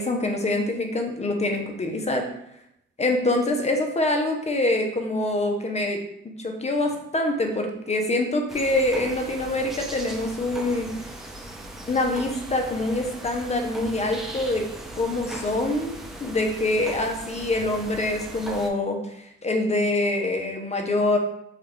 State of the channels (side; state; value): both; normal; correlation 0.44